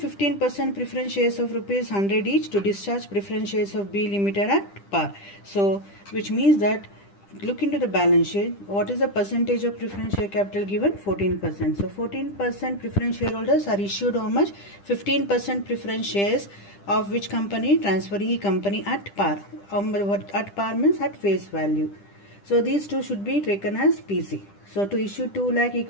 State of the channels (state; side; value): late; right; 10 ms